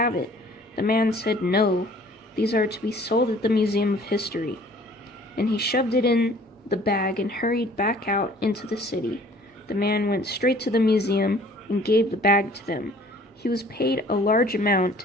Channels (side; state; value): both; normal; correlation 0.53